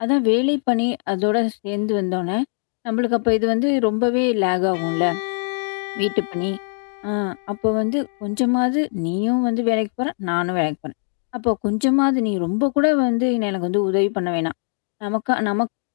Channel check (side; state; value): right; silent; digital silence